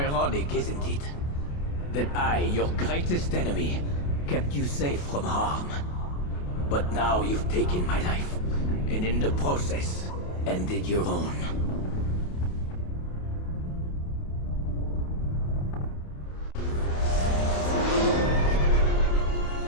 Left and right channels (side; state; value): right; late; 28 ms